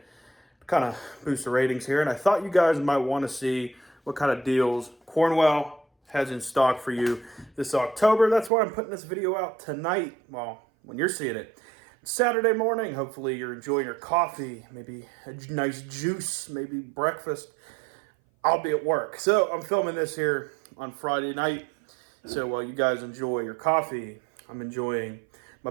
to kind of boost the ratings here. And I thought you guys might want to see what kind of deals Cornwell has in stock for you this October. That's why I'm putting this video out tonight. Well, when you're seeing it. Saturday morning, hopefully you're enjoying your coffee, maybe a nice juice, maybe breakfast. I'll be at work. So I'm filming this here on Friday night. So while you guys enjoy your coffee, I'm enjoying my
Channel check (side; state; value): left; drops out; at 8.5 s